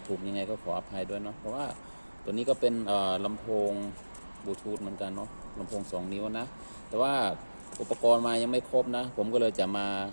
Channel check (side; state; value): both; inverted; correlation -1.00